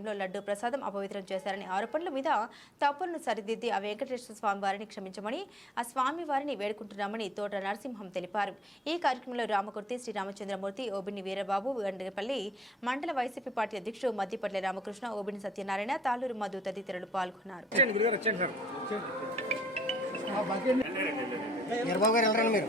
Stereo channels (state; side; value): normal; both; correlation 0.64